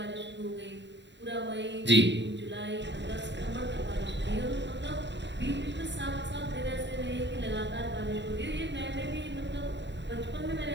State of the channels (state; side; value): late; left; 0.52 ms